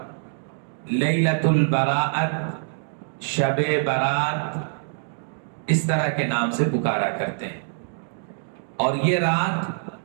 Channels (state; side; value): silent; left; digital silence